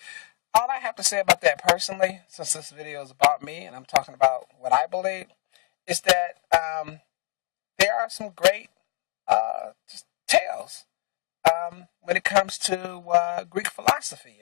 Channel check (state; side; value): quieter; right; 23.5 dB